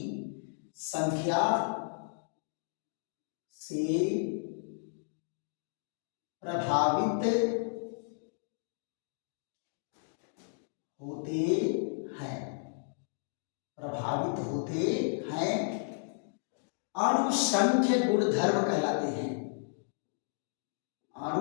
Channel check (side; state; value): right; silent; digital silence